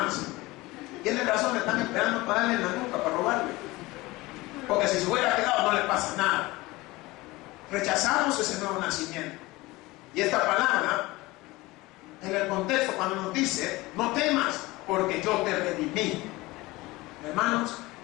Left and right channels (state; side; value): quieter; right; 20.8 dB